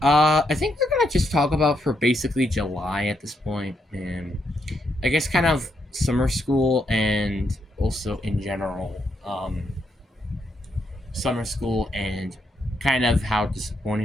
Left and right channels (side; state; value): both; normal; correlation 0.79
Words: I think we're gonna just talk about for basically July at this point, and I guess kind of summer school and also in general. Summer school and kind of how